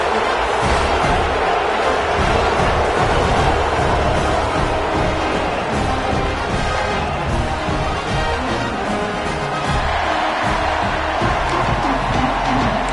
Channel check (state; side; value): identical; both; correlation 1.00